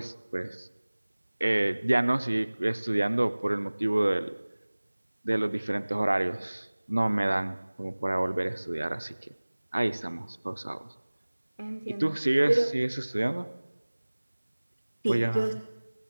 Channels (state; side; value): inverted; both; correlation -1.00